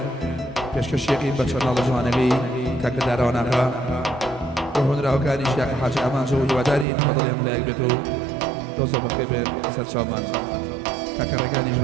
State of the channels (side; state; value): left; drops out; at 6.9 s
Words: پێشکەشێکی بە چەناڵە جوانەکەی کاکە داراواناغا هۆنراوەکانی شیاکە حاجی ئامانجە و هیوادارین بەدڵێم لایەک بێت و دۆزە بەخێر بێن سەرچاومان کاکە ڕێگانیش